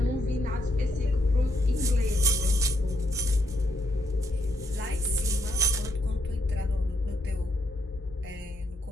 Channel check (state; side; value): normal; both; correlation 0.76